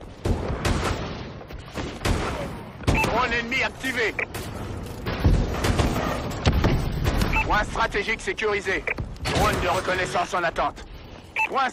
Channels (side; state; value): both; identical; correlation 1.00